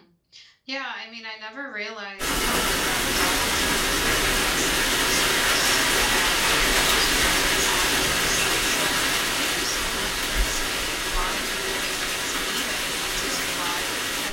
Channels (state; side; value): identical; both; correlation 1.00